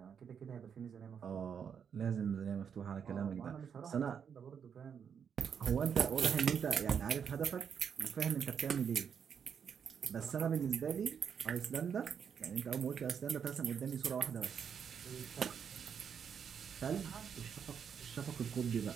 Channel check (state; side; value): quieter; left; 7.4 dB